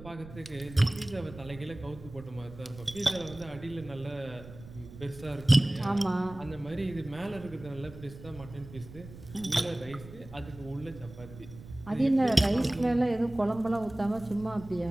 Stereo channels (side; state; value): right; noise; rumble, 16 dB below the sound